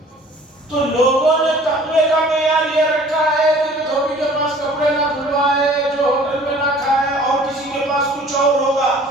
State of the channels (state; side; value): normal; both; correlation 0.50